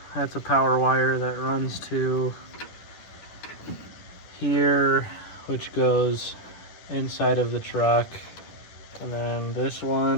That's a power wire that runs to here, which goes inside of the truck. And then this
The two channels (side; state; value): right; late; 10 ms